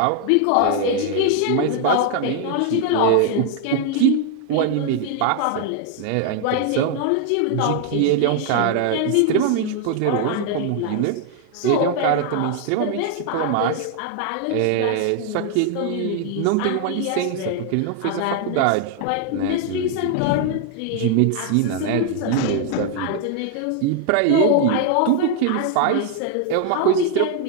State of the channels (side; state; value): both; different; correlation 0.00